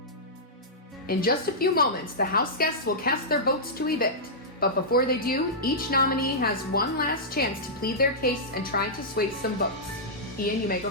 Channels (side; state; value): both; normal; correlation -0.12